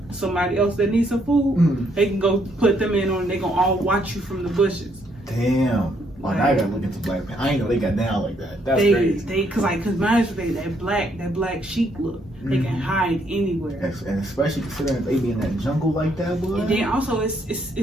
else that needs some food, they can go put them in on, and they gonna all watch you from the bushes. Damn. Like, I gotta look into Black Panther. I ain't know they got down like that. That's crazy. Cause mine that black sheep look. They can hide anywhere. And especially considering they be in that jungle like that, boy. And then also it's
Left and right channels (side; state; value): both; normal; correlation 0.71